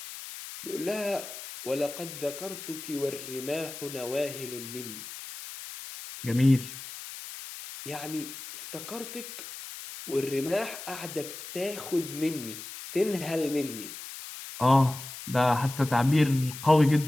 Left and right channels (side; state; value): left; noise; hiss, 11 dB below the sound